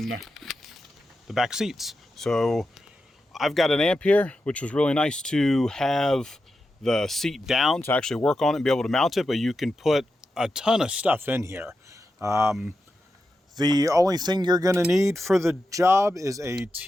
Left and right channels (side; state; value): both; normal; correlation 0.89